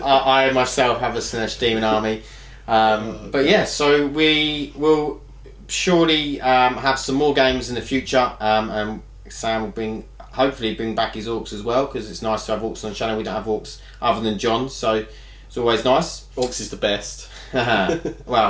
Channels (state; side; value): identical; both; correlation 1.00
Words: I myself have a Slanesh Demon army. But yeah, so we will surely have some more games in the future, and Sam will hopefully bring back his Orks as well, because it's nice to have Orks on the channel. We don't have Orks other than John, so it's always nice. Orcs is the best.